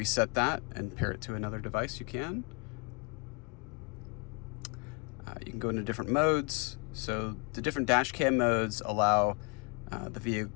that and pair it to another device, you can. You can go into different modes. So the different dash cam modes allow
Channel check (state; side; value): quieter; right; 34.1 dB